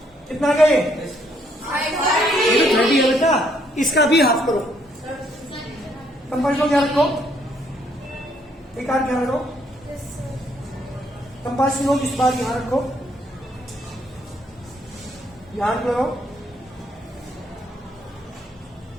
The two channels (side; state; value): both; normal; correlation 0.69